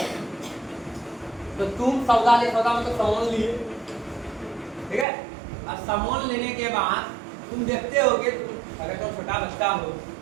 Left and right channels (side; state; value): left; drops out; at 5.1 s